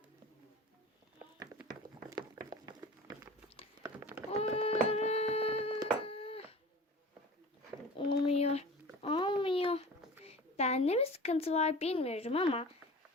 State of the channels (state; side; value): normal; both; correlation 0.38